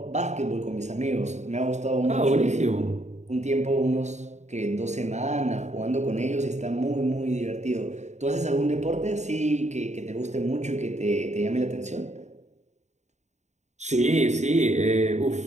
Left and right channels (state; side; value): late; left; 0.34 ms